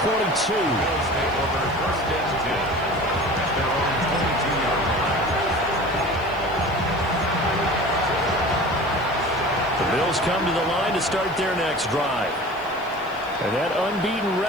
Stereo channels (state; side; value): noise; left; hiss, 26 dB below the sound